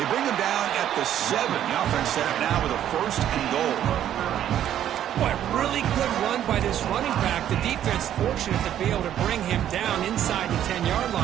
bring him down at the 7. The offense set up now with a 1st and goal. Boy, really good run by this running back. The defense fortunate to be able to bring him down inside the 10-yard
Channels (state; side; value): quieter; left; 10.9 dB